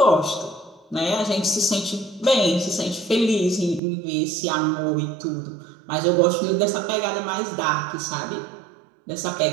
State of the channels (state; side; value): drops out; left; at 3.8 s